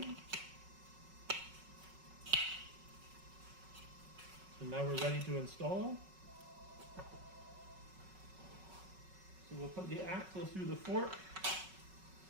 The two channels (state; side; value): late; left; 5.4 ms